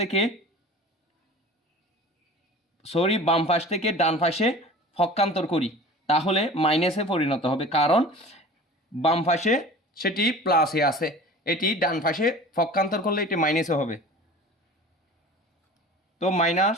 থেকে ডান পাশে পক্ষান্তর করি তাহলে মাইনাসে পরিণত হবে, কারণ বাম পাশে সেটি প্লাসে আছে, এটি ডান পাশে পক্ষান্তর করলে এটি মাইনাসে হবে। তো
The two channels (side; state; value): both; normal; correlation 0.40